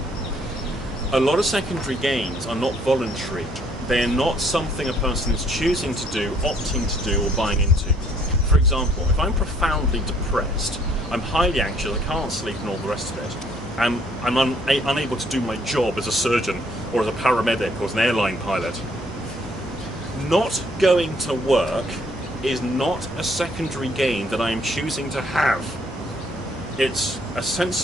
A lot of secondary gains are not voluntary. They're not something a person is choosing to do, opting to do, or buying into. For example, if I'm profoundly depressed, I'm highly anxious, I can't sleep and all the rest of it, and I'm unable to do my job as a surgeon or as a paramedic or as an airline pilot, not going to work is not a secondary gain that I am choosing to have. It's a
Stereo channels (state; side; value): normal; both; correlation 0.64